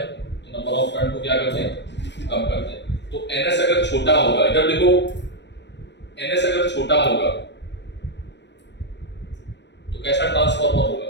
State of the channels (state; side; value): late; right; 0.51 ms